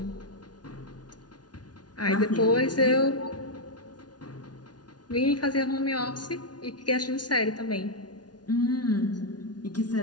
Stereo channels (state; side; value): late; right; 0.69 ms